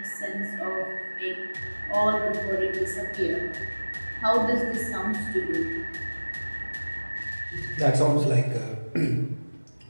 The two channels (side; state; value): both; inverted; correlation -1.00